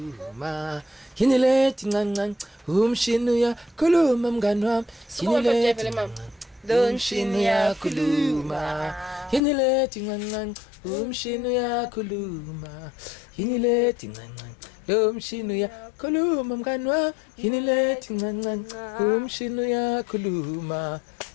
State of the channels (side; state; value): right; drops out; at 9.4 s